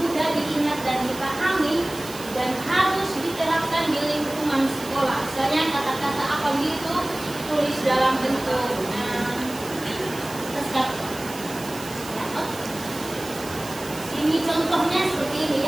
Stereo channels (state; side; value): noise; right; hiss, 14 dB below the sound